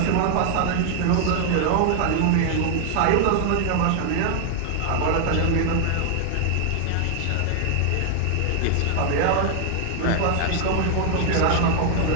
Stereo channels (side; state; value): both; different; correlation 0.00